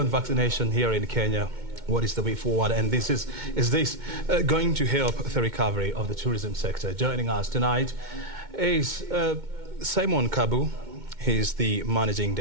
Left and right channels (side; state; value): left; late; 2.2 ms